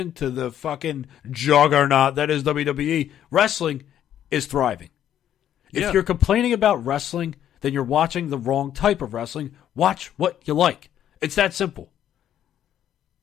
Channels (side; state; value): right; quieter; 10.7 dB